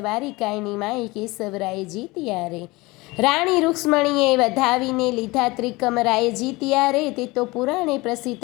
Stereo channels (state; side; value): quieter; right; 22.5 dB